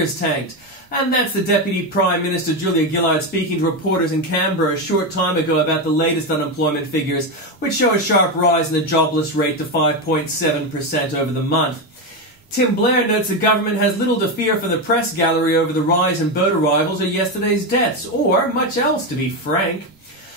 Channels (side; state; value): both; normal; correlation 0.12